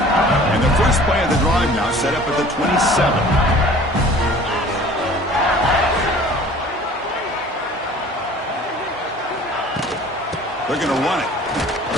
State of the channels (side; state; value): both; normal; correlation 0.47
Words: And the first play of the drive now set up at the 27. They're going to run it.